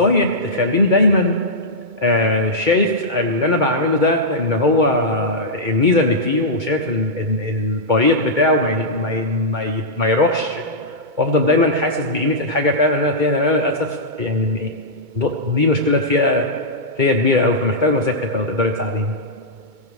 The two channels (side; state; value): left; late; 2.2 ms